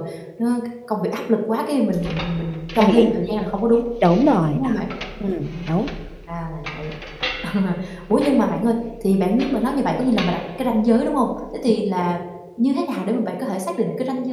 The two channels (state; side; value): identical; both; correlation 1.00